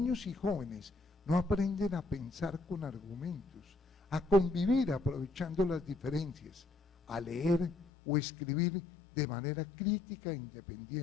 y jóvenes no aprenden a pensar con argumentos, a convivir aprovechando las diferencias, a leer o escribir de manera crítica e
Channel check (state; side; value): drops out; right; at 7.9 s